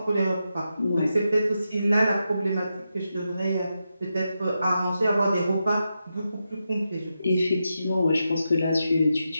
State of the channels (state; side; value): inverted; both; correlation -0.87